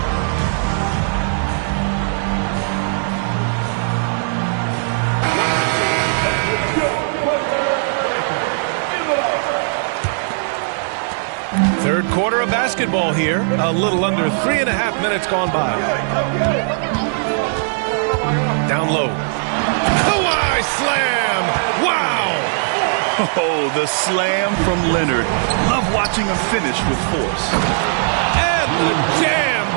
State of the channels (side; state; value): left; silent; digital silence